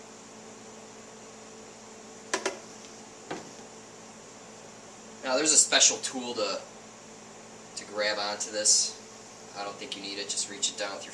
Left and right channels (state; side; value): identical; both; correlation 1.00